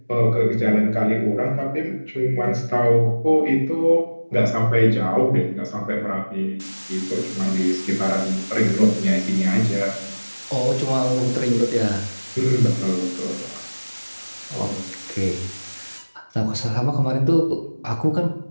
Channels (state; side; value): inverted; both; correlation -1.00